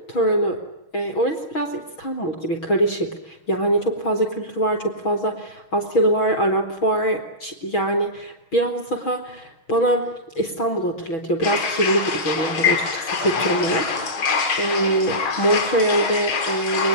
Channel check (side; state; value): right; late; 6.4 ms